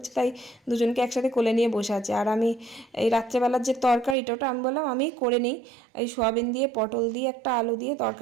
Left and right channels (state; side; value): drops out; left; at 4.2 s